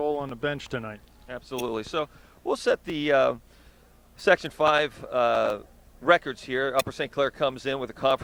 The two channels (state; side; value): identical; both; correlation 1.00